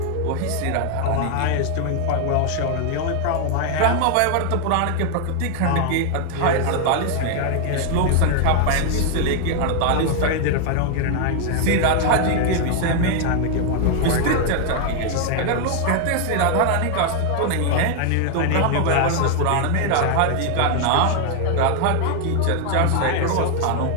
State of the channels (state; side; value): different; both; correlation 0.00